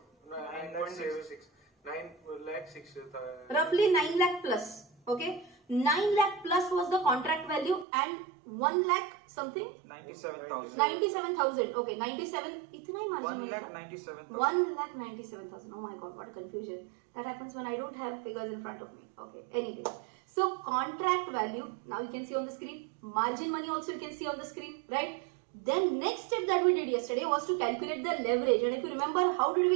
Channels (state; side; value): drops out; left; at 7.9 s